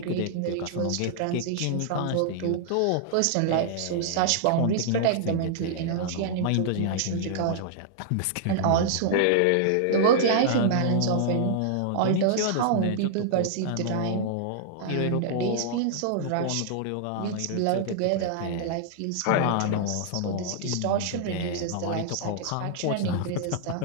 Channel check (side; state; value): both; different; correlation -0.01